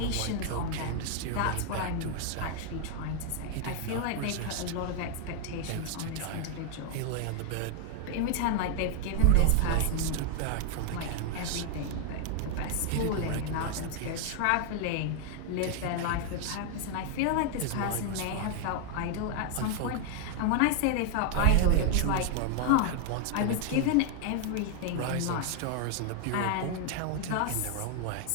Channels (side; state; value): both; different; correlation 0.00